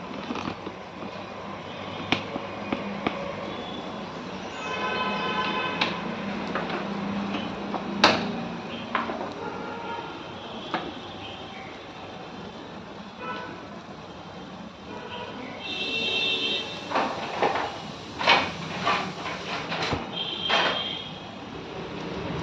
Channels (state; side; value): identical; both; correlation 1.00